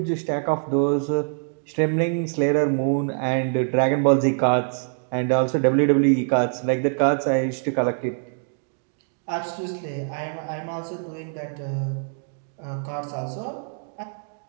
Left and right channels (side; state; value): left; silent; digital silence